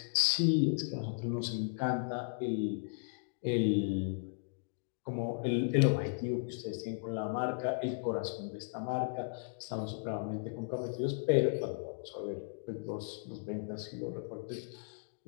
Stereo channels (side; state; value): right; silent; digital silence